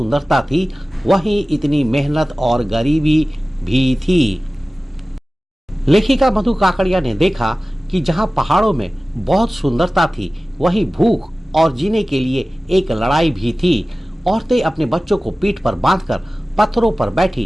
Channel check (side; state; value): both; normal; correlation 0.97